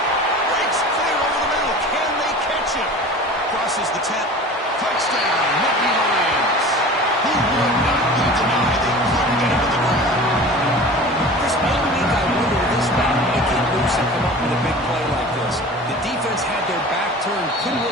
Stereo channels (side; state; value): both; normal; correlation 0.39